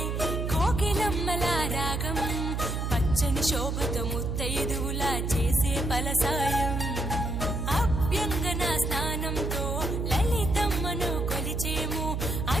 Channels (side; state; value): right; noise; hum, 2 dB below the sound